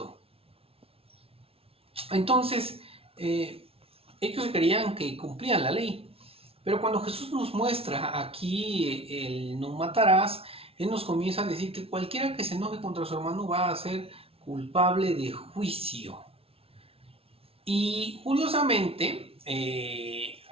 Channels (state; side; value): late; left; 0.28 ms